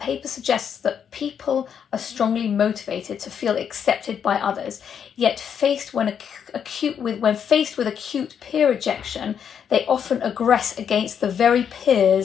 suggests that people are strongly motivated to feel accepted by others, yet when faced with acute peer rejection, they often aggress against the very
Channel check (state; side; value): quieter; right; 7.9 dB